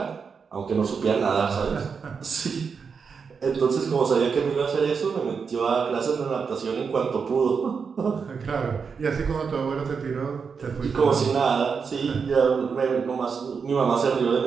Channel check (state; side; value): quieter; left; 5.8 dB